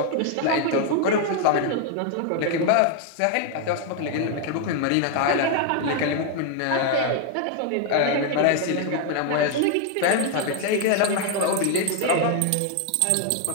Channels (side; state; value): both; different; correlation 0.00